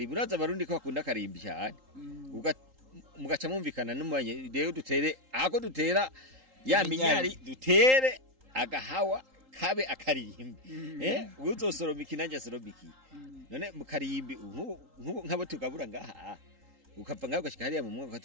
uraza abarundi ko bakunda karimbi cyane mugaca mumvikana n'umanye rero dutere ako dutera ya minyari dutere agahawa kabe akarimbi. Uzosoroma ikinanja soromiki. None mu karimbi nk'abo tugabura ngaha ukapfa ngaho gashika hariya mu mwonga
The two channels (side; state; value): left; late; 3.8 ms